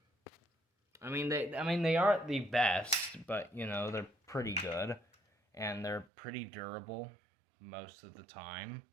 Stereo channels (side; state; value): left; drops out; at 6.1 s